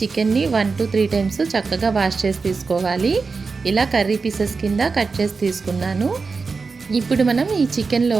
1 to 3 times చక్కగా వాష్ చేసి తీసుకోవాలి. ఇలా కర్రీ పీసెస్ కింద కట్ చేసి తీసుకున్నాను. ఇప్పుడు మనం ఈ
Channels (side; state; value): left; quieter; 4.5 dB